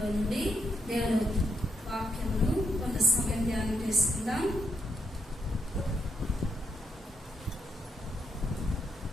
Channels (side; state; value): both; normal; correlation 0.78